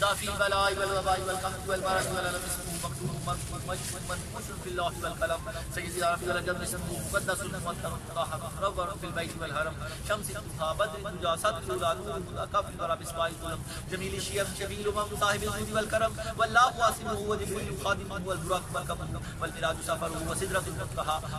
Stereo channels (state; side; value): identical; both; correlation 1.00